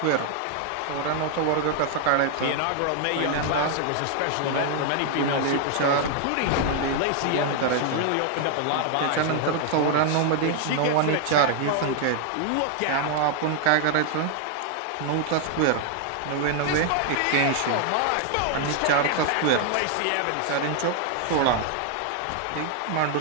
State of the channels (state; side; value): different; both; correlation 0.00